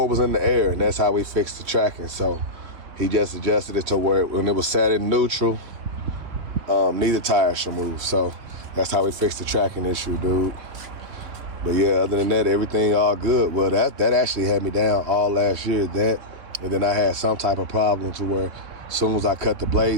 was in the air, and that's how we fixed the tracking. So he just adjusted it to where when it was set in neutral, neither tire should move. So that's how we fixed the tracking issue, dude. But yeah, other than that, everything all good. Well, that actually had me down all last year. And then I had some type of problem to where as soon as I cut the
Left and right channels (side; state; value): left; late; 3.4 ms